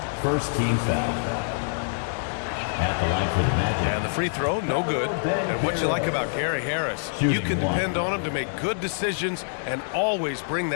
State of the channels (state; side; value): silent; right; 61 dB below the other